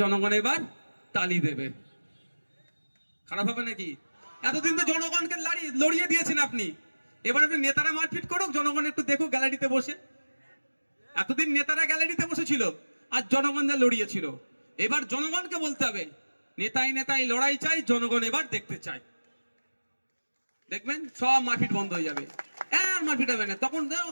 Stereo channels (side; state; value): both; inverted; correlation -1.00